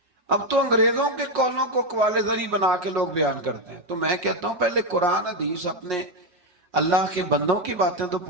اب تو انگریزوں کے قولوں کو اقوال زری بنا کے لوگ بیان کرتے ہیں۔ تو میں کہتا ہوں پہلے قرآن حدیث اپنے اللہ کے بندوں کی باتیں تو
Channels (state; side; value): late; left; 5.6 ms